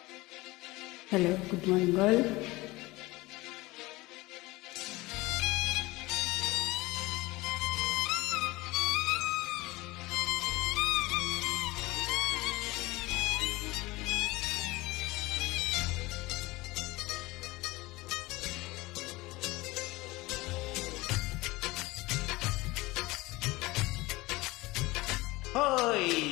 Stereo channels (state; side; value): quieter; right; 21.0 dB